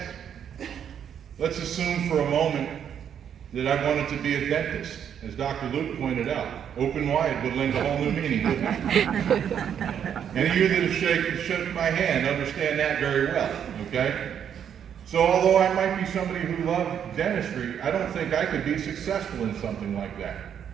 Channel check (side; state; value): left; quieter; 8.6 dB